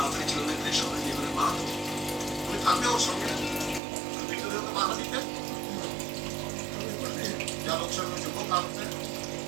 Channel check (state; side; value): drops out; left; at 3.8 s